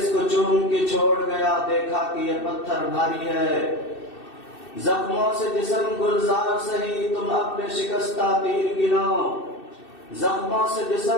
کو چوم کے چھوڑ گیا، دیکھا کہ یہ پتھر بھاری ہے. زخموں سے جسم گلزار سہی، تم اپنے شکستہ تیر گنو. زخموں سے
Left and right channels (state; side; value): late; right; 2.6 ms